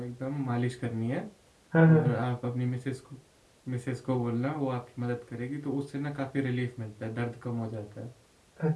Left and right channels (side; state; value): both; identical; correlation 1.00